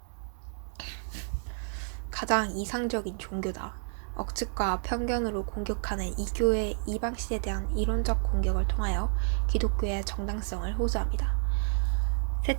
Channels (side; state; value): left; silent; digital silence